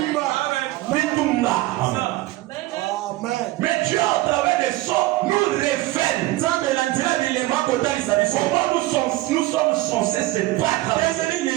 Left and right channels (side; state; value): left; quieter; 18.1 dB